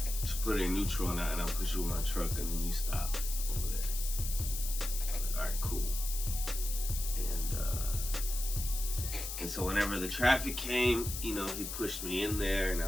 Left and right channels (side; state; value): left; noise; hiss, 6 dB below the sound